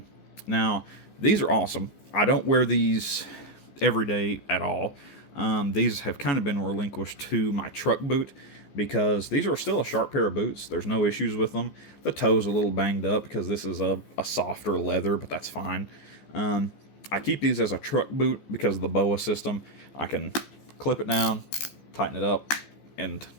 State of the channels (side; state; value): right; late; 15 ms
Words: Now, these are awesome. I don't wear these every day at all. These have kind of been relinquished to my truck boot because these are still a sharp pair of boots. There's no issues with them. The toe's a little banged up because this is a softer leather, but that's fine. I keep these as a truck boot because of the BOA system. I can clip it down, tighten it up, and